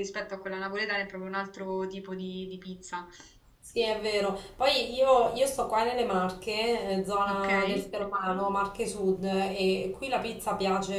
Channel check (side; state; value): both; identical; correlation 1.00